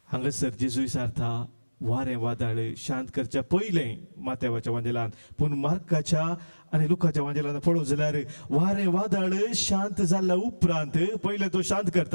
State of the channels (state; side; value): inverted; both; correlation -1.00